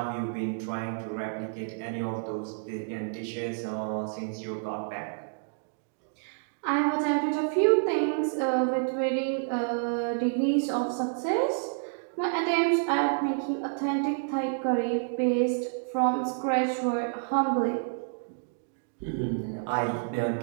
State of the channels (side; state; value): left; silent; digital silence